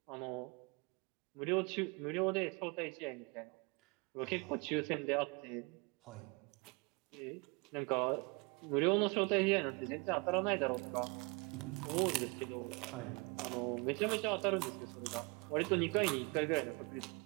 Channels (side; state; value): left; quieter; 29.6 dB